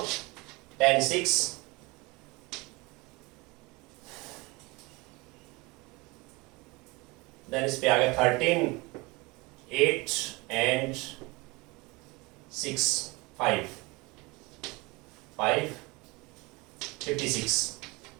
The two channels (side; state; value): left; quieter; 24.9 dB